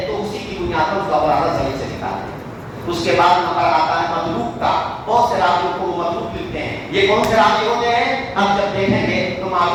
تو اسی کی بنیاد پر اس کا خلاصہ صحیح سے نکالتے ہیں۔ اس کے بعد نمبر آتا ہے مطلوب کا، بہت سے راویوں کو مطلوب لکھتے ہیں۔ یہ کون سے راوی ہوتے ہیں؟ ہم جب دیکھیں گے تو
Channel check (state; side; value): identical; both; correlation 1.00